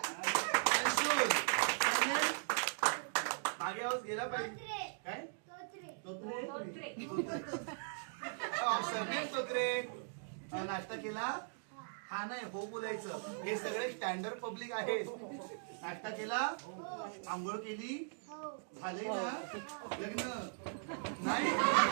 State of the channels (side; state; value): left; silent; digital silence